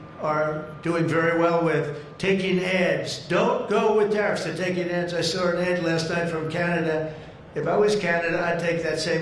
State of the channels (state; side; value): identical; both; correlation 1.00